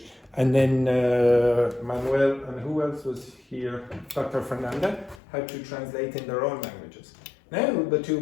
and then Manuel and who else was here? Dr. Fernanda had to translate in their own languages. Now the two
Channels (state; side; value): drops out; right; at 5.2 s